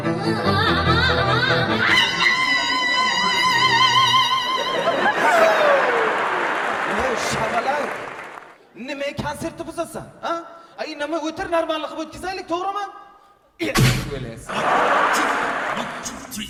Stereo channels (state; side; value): identical; both; correlation 1.00